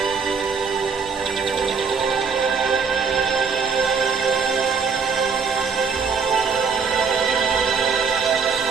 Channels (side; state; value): left; quieter; 5.5 dB